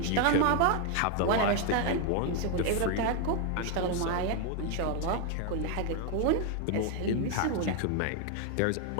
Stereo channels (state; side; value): different; both; correlation 0.01